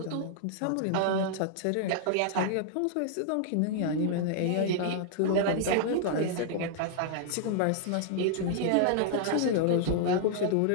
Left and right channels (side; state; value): both; different; correlation -0.01